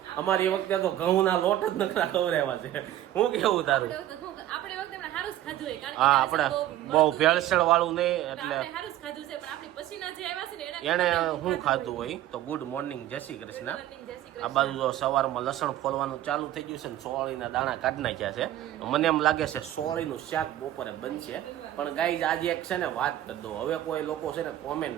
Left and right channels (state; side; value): quieter; left; 13.2 dB